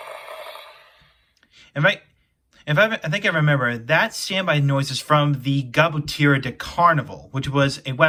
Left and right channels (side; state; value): both; identical; correlation 1.00